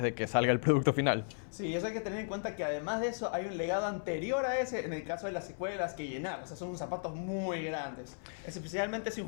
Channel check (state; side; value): silent; right; 54 dB below the other